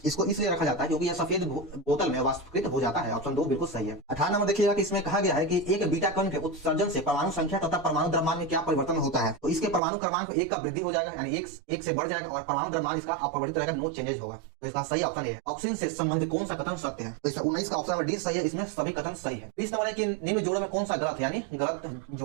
इसको इसलिए रखा जाता है क्योंकि यह सफेद बोतल में वाष्पीकृत हो जाता है। ऑप्शन 2 बिल्कुल सही है। 18 नंबर देखिएगा कि इसमें कहा गया है कि एक बीटा कण के उत्सर्जन से परमाणु संख्या तथा परमाणु द्रव्यमान में क्या परिवर्तन होता है? तो इसके परमाणु क्रमांक 1 का वृद्धि हो जाएगा, यानी 1 से बढ़ जाएगा और परमाणु द्रव्यमान इसका अपरिवर्तित रहेगा, नो चेंजेस होगा। तो इसका सही ऑप्शन ए। ऑक्सीजन से संबंधित कौन सा कथन सत्य है? तो इसमें 19 का ऑप्शन नंबर डी सही है। इसमें सभी कथन सही है। 20 नंबर है कि निम्न जोड़ों में कौन सा गलत है, यानी गलत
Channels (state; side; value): drops out; left; at 9.8 s